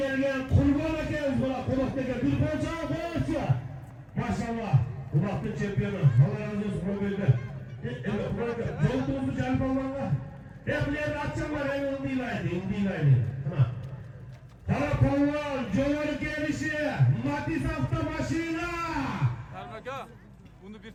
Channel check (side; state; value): both; identical; correlation 1.00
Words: Kurban'a geliriz buna. Konak'taki bir konçağı koyarsa. Maşallah. Konak'ın şampiyonu. Allah razı olsun Kurban'da. Evet Kurban'da. Yolduğumuzu canım Allah'la. Hep buraya atacaklar. En onu değil aynı. En değil aynı. Tamam. Karakollar, Cömert gelişi, Matiz hafta başıyla. Ermeka, bunu bir